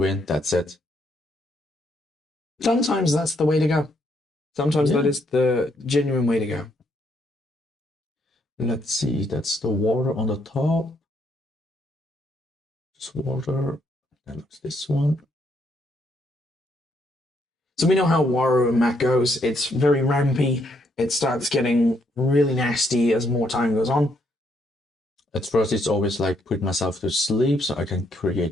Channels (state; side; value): normal; both; correlation 0.73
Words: that's it. Sometimes that's the way to go. Sometimes that is the genuine way to go. Let's see, that's the water on the top. Just water. That looks this one. So we know how Waru and Mac goes. It's very rampy. It starts getting really nasty as more time goes on. At first, it's always like put myself to sleep so I can